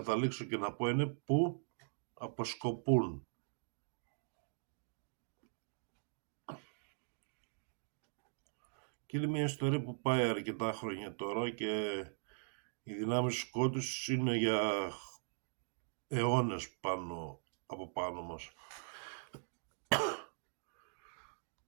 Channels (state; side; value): silent; left; digital silence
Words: και να πω είναι που αποσκοπούν. Και είναι μια ιστορία που πάει αρκετά χρόνια τώρα και οι δυνάμεις του σκότους είναι για αιώνες από πάνω μας.